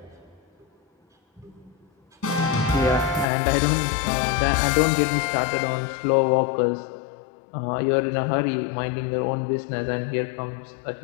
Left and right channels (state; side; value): drops out; right; at 3.2 s